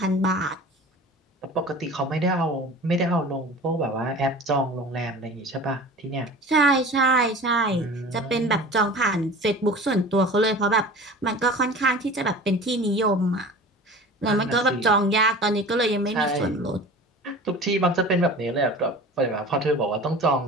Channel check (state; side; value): normal; both; correlation 0.39